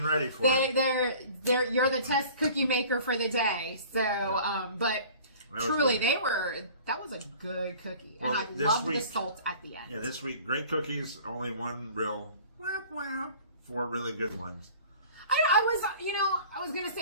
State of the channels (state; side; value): inverted; both; correlation -0.46